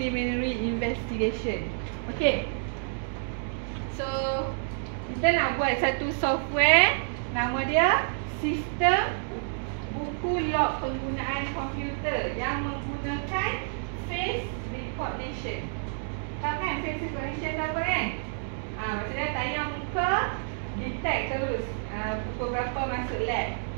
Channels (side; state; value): left; silent; digital silence